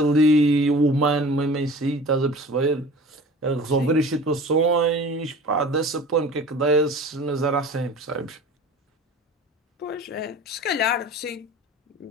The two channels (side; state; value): both; normal; correlation 0.41